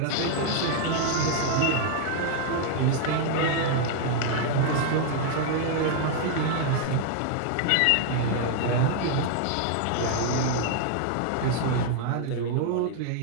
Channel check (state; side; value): different; both; correlation 0.00